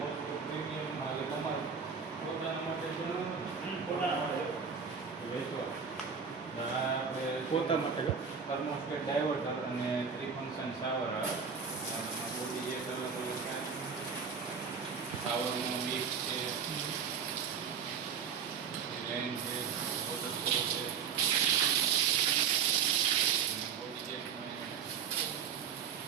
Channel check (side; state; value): left; quieter; 6.7 dB